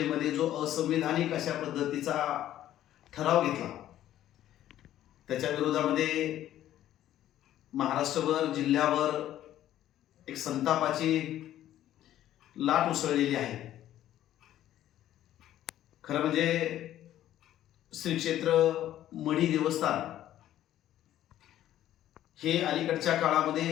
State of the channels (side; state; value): right; quieter; 12.6 dB